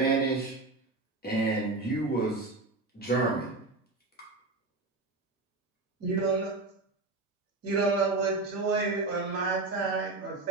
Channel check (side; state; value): left; quieter; 3.4 dB